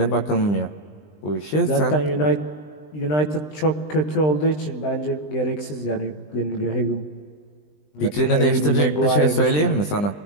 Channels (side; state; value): right; late; 20 ms